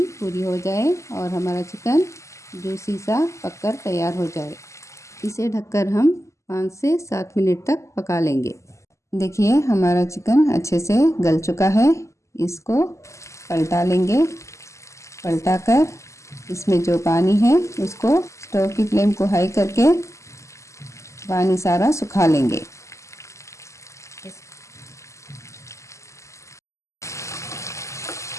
पूरी हो जाए और हमारा चिकन जूसी सा पककर तैयार हो जाए। इसे ढककर हम 5 से 7 मिनट तक पका लेंगे। देखिए, हमारा चिकन अच्छे से गल चुका है। इसको पलटा लेंगे। पलटाकर इसमें जो पानी है उसको स्टोव की फ्लेम को हाई करके पानी सारा सुखा लेंगे।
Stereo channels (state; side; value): late; right; 0.14 ms